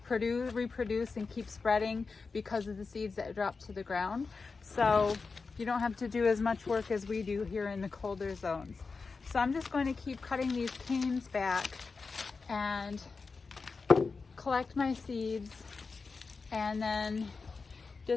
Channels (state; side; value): quieter; right; 4.5 dB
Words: reproduce and keep spreading because of the seeds that drop to the ground. So you don't have to do as much work as we do here in the colder zones. So I'm just going to keep cutting these canes back and collect my seeds and then